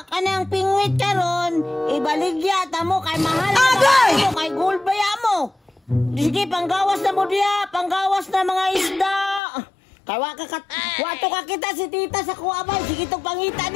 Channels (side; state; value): right; drops out; at 9.4 s